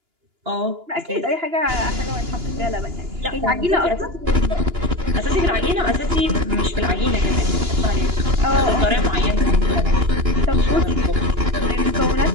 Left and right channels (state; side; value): late; left; 2.9 ms